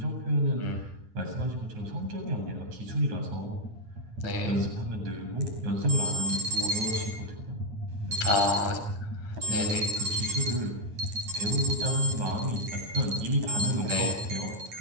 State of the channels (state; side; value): late; left; 9.3 ms